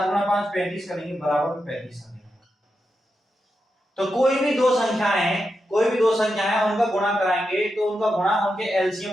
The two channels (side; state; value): both; normal; correlation 0.87